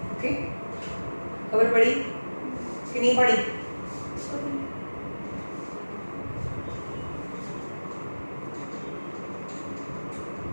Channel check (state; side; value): inverted; both; correlation -1.00